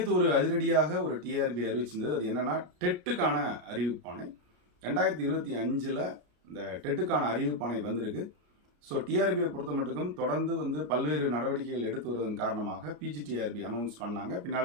ஒரு அதிரடியாக ஒரு டிஆர்பி அறிவிச்சிருந்தது. அது என்னன்னா டெட்டுக்கான அறிவிப்பானை 2025 இந்த டெட்டுக்கான அறிவிப்பானை வந்திருக்கு. ஸோ டிஆர்பியை பொறுத்த மட்டுக்கும் தொடர்ந்து பல்வேறு நடவடிக்கைகள் எடுத்து வருவதன் காரணமாக பிஜிடிஆர்பி அனௌன்ஸ் பண்ணாங்க.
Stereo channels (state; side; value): late; left; 33 ms